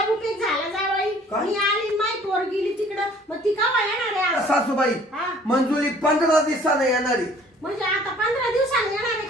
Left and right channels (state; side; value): normal; both; correlation 0.54